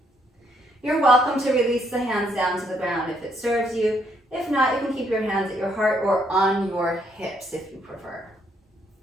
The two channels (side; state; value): both; normal; correlation 0.71